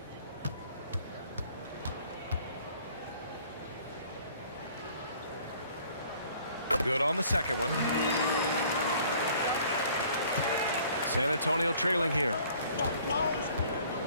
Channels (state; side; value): inverted; both; correlation -0.55